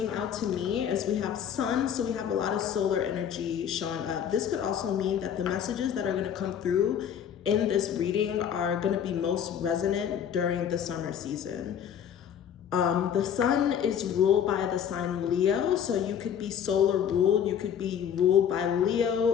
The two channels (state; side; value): quieter; right; 8.7 dB